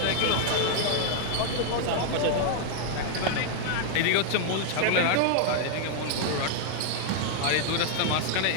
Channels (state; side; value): different; both; correlation 0.00